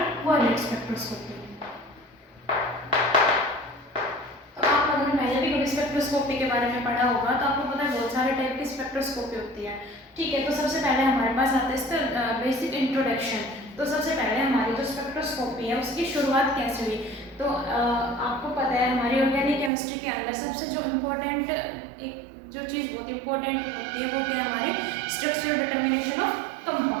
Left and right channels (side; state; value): left; drops out; at 19.7 s